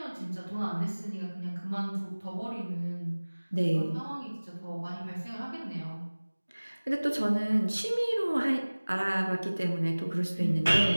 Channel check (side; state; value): both; inverted; correlation -1.00